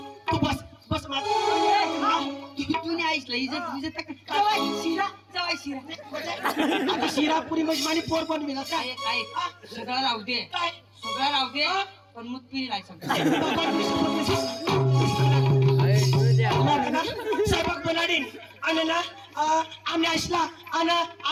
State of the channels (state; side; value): identical; both; correlation 1.00